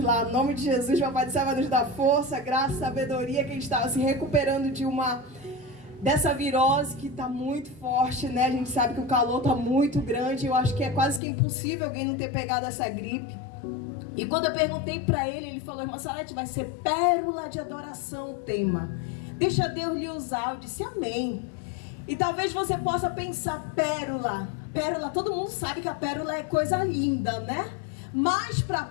em nome de Jesus, o Papai do Céu vai nos dar força, graça, sabedoria, que a gente estava se recuperando dessa virose que está muito forte, né? A gente sabe que o calor está muito grande, eu acho que é quase que impossível alguém não ter pegado essa gripe. E quando eu perguntei para ele, ele falou: irmã Salete, vai ser pérola de adoração o tema. Deixa Deus lhe usar. Eu disse amém. E talvez você possa pensar, pérola. Pérola, todo mundo sabe que a pérola é coisa linda, né? Mas para a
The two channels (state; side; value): drops out; right; at 11.2 s